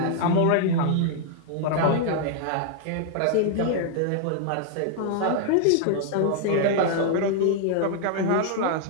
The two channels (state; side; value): different; both; correlation -0.01